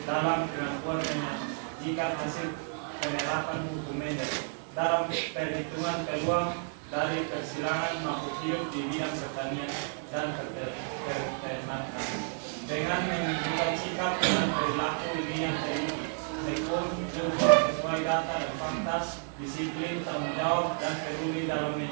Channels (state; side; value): silent; left; 56 dB below the other